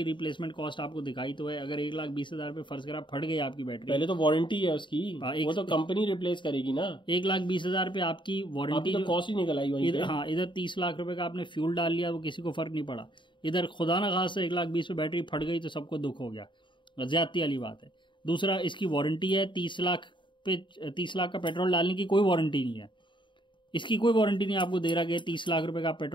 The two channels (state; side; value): late; right; 0.23 ms